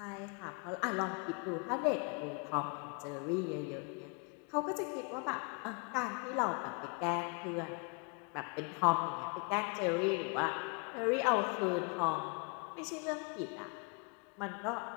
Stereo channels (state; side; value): quieter; right; 33.9 dB